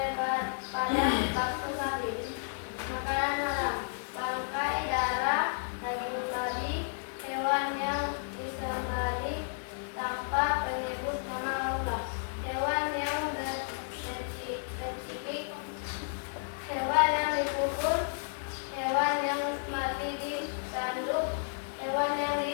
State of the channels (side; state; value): right; silent; 56 dB below the other